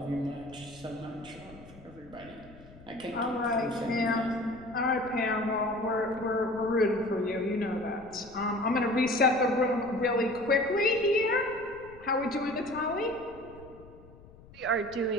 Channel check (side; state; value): left; noise; rumble, 21 dB below the sound